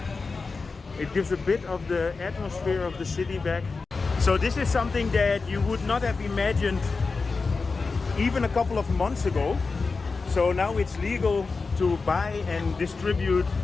It gives a bit of the atmosphere of the city back. So this is something that you would not have imagined even a couple of months ago. So now it's legal to buy and distribute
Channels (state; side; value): quieter; right; 4.3 dB